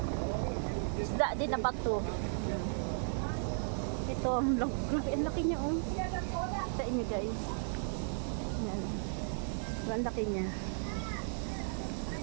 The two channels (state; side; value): silent; left; 54 dB below the other